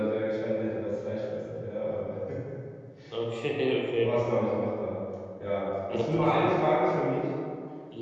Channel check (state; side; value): identical; both; correlation 1.00